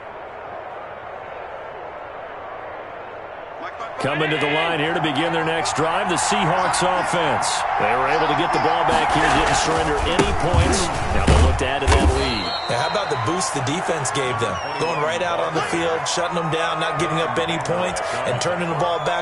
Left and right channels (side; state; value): both; identical; correlation 1.00